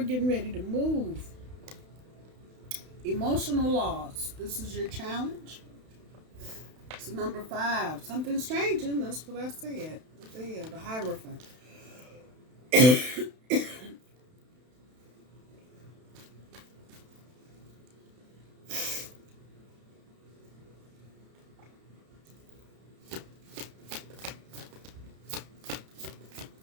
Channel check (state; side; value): late; left; 32 ms